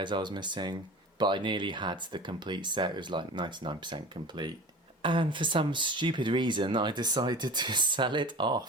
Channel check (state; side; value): normal; both; correlation 0.37